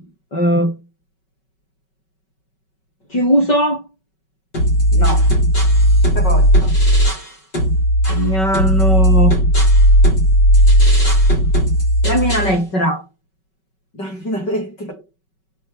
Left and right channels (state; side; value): late; right; 5.3 ms